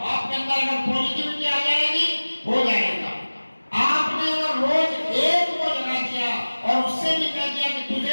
आपके अंदर अगर पॉजिटिविटी आ जाएगी, हो जाएगा। आपने अगर रोज एक को जगा दिया और उससे भी कह दिया कि तुझे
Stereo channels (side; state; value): both; inverted; correlation -1.00